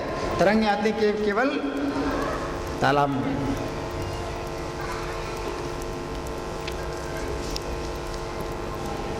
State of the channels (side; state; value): both; identical; correlation 1.00